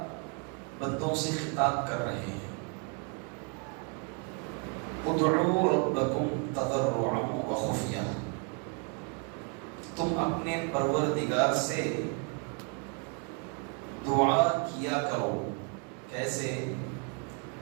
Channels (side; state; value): left; quieter; 35.8 dB